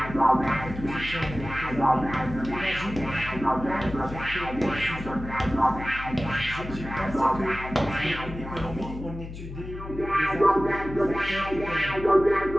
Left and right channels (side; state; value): left; noise; hum, 11 dB below the sound